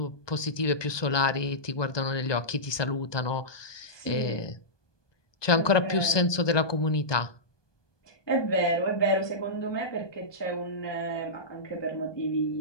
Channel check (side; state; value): right; late; 1.2 ms